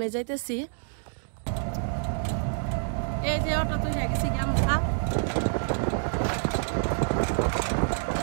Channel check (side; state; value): left; silent; digital silence